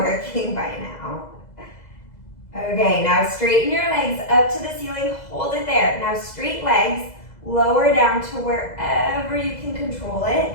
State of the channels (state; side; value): late; right; 2.0 ms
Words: by now. Okay, now straighten your legs up to the ceiling, hold it there. Now straight legs, lower down to wherever you can control it.